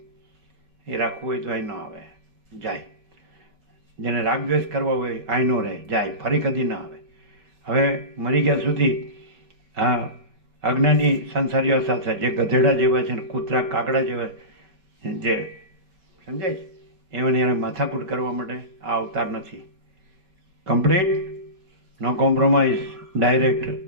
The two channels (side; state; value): left; late; 5.2 ms